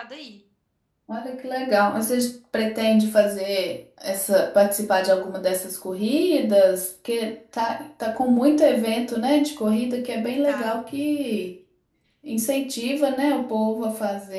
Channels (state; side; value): identical; both; correlation 1.00